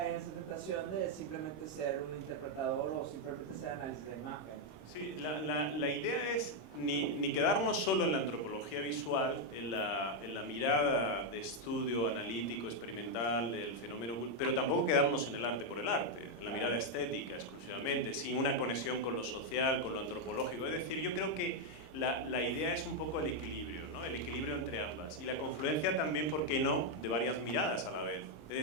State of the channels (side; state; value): right; late; 26 ms